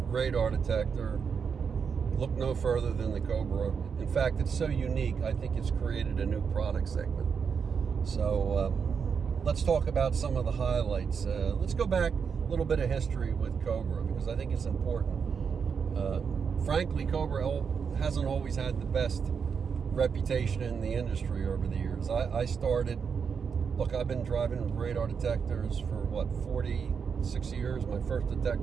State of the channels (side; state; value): left; quieter; 6.3 dB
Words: radar detector, look no further than the Cobra. In fact, it's so unique, I think it's created a new product segment. So let's talk about some of the highlights. Let's go back a little bit of history with Cobra, because I think it's important. Frankly, Cobra hasn't always had the best reputation in the industry over the years. I started, I've been driving radar detectors for 46 years. My first